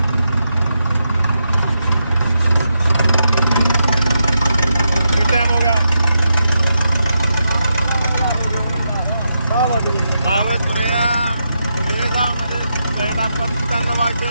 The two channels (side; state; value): both; inverted; correlation -0.84